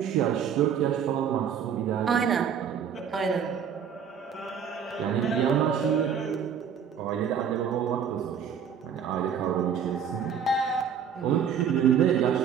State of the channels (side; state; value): left; quieter; 7.6 dB